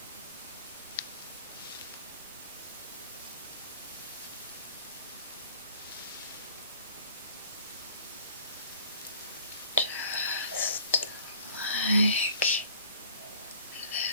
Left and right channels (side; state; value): both; inverted; correlation -0.50